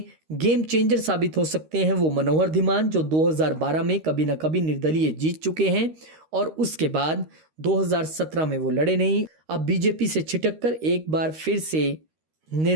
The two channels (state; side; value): late; left; 13 ms